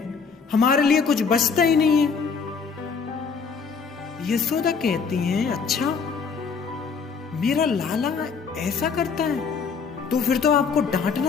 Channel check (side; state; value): right; quieter; 5.6 dB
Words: हमारे लिए कुछ बचता ही नहीं है। यशोदा कहती हैं अच्छा मेरा लाला ऐसा करता है तो फिर तो आपको